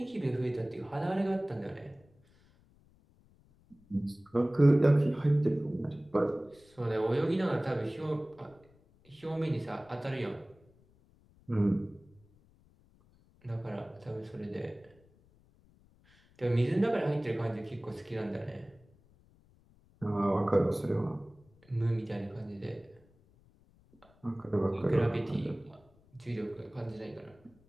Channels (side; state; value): left; noise; rumble, 30 dB below the sound